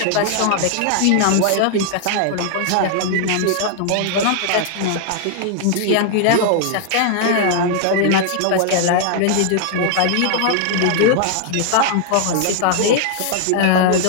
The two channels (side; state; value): both; different; correlation 0.00